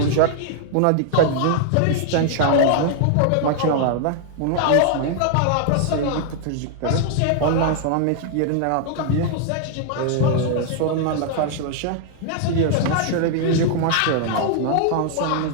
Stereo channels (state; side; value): different; both; correlation 0.00